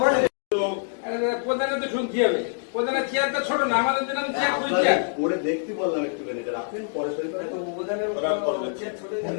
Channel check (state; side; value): silent; right; digital silence